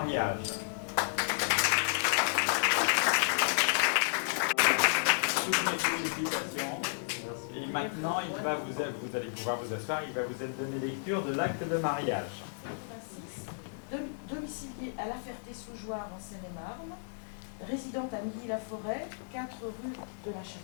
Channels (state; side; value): silent; right; digital silence